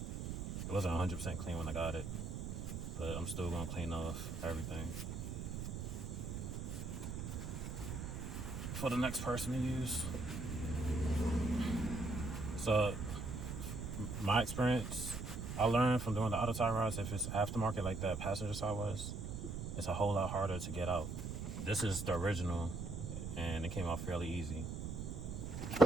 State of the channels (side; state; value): right; noise; rumble, 5 dB below the sound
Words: It wasn't 100% clean when I got it, but I'm still gonna clean off everything for the next person to use. So my experience, I learned from doing the auto tie rods, if it's aftermarket like that passenger side was, it's a whole lot harder to get out. This is the original and it came out fairly easy